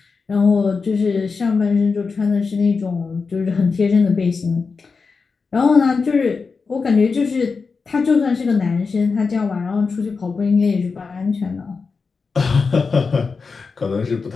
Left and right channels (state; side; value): quieter; right; 4.8 dB